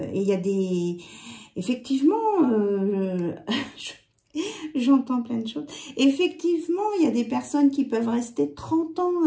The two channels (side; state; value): both; identical; correlation 1.00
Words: il y a des... Effectivement, j'entends plein de choses. Effectivement, il y a des personnes qui peuvent rester 30 ans